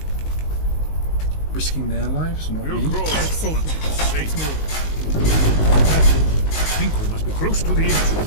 risking their lives, not me? It's safe now. Let's move. That's it. I think we must be close to the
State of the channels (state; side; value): late; right; 19 ms